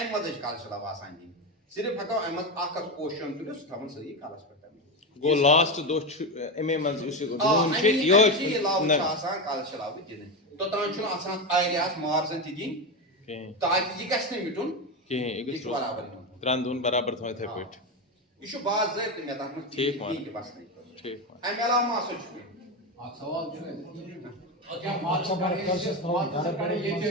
منٛزٕے چھِ کلشہِ لو آسان دِنۍ صرف ہٮ۪کو امہِ منٛز اکھ پوشن تُلِتھ سُہ تھاوُن سٲری کلس پٮ۪ٹھ گوٚو لاسٹ دۄہ چھُ اَمے منٛز یُس لو چھُ آسان کلشہِ لو دِنہٕ توٚتام چھُنہٕ آسان ایریاہس مارزن تہِ دِنۍ تاکہِ یہِ گژھِ نہٕ مِٹُن کِہیٖنۍ یہِ چھُ برابر یِوان 3 دۄہن برابر تھاوٕنۍ یِتھٕے پٲٹھۍ یہِ چھُ باضٲبطہٕ مےٚ تتھ منٛز ٹھیٖک امہِ علاوٕ ما ہسا چھُ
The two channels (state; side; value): normal; both; correlation 0.15